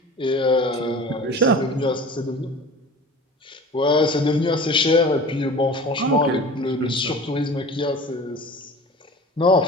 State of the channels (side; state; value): both; normal; correlation 0.39